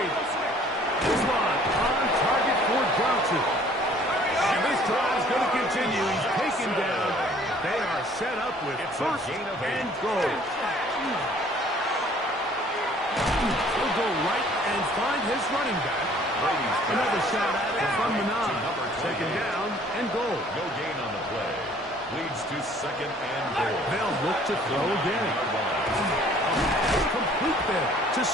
This one on target for Johnson. And this drive is going to continue. He's taken down. They are set up with 1st and goal. He'll go right and find his running back. Another shot at it from the 9. Second down and goal. No gain on the play. Leads to second and goal. They'll look to throw again. Complete there to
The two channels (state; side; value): normal; both; correlation 0.56